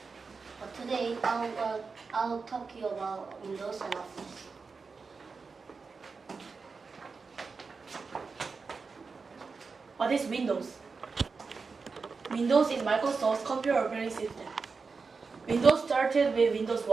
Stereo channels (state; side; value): quieter; left; 4.7 dB